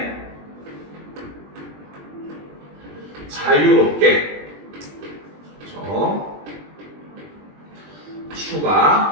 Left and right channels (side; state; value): left; late; 20 ms